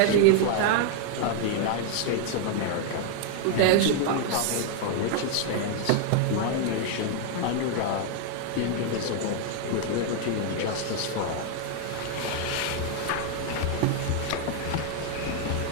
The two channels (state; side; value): different; both; correlation 0.00